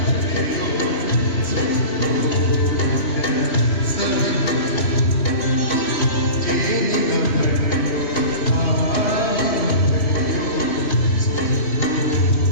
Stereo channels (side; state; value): right; late; 3.1 ms